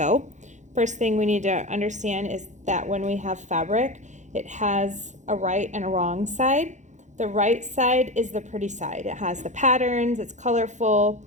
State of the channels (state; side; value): late; left; 0.35 ms